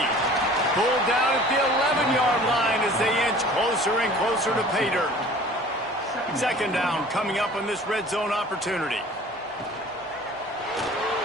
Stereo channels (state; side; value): normal; both; correlation 0.47